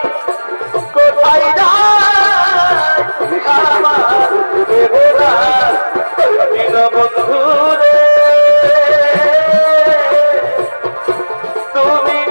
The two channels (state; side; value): inverted; both; correlation -1.00